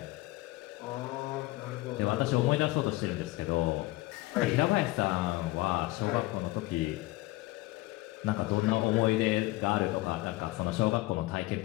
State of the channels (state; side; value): quieter; right; 19.8 dB